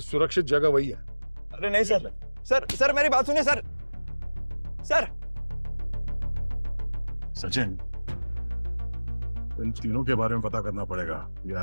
जगह वही है। अरे नहीं सर, सर मेरी बात सुनिए सर। सचिन, इन तीनों के बारे में पता करना पड़ेगा। ये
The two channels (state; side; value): inverted; both; correlation -1.00